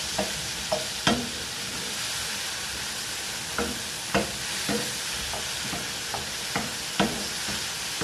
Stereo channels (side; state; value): both; identical; correlation 1.00